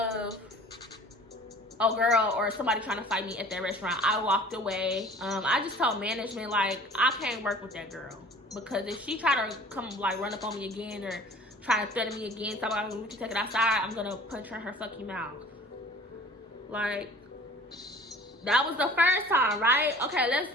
a girl or somebody trying to fight me at that restaurant. I walked away. I just told management, like, I can't work with that girl, because if she try to come like run up on me again or try to threaten me again, talking about we can take it outside, I'm gonna punch her in her fucking mouth. Like, that was the first time, right? Okay,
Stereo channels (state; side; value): normal; both; correlation 0.47